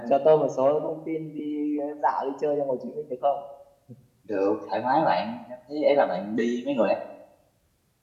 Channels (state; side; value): identical; both; correlation 1.00